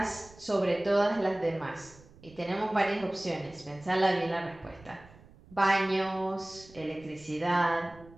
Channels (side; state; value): right; noise; rumble, 23 dB below the sound